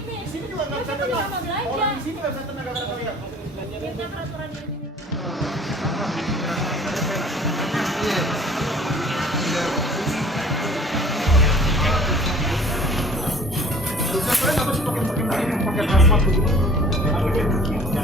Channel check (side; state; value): both; normal; correlation 0.49